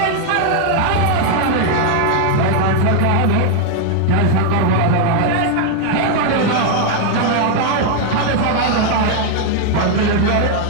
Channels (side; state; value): both; different; correlation 0.00